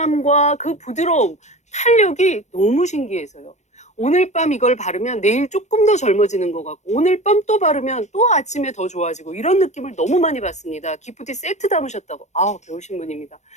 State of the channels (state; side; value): late; right; 0.34 ms